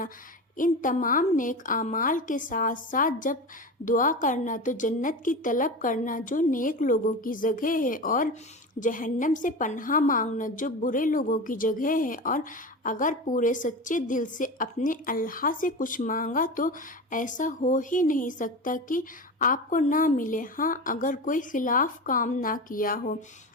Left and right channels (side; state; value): both; normal; correlation 0.26